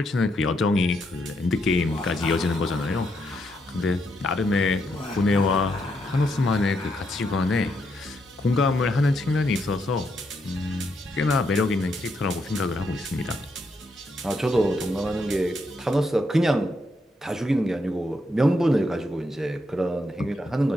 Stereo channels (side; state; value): both; normal; correlation 0.79